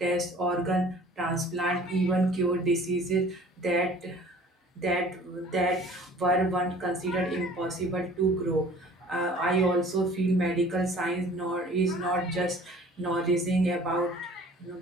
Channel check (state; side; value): normal; both; correlation 0.49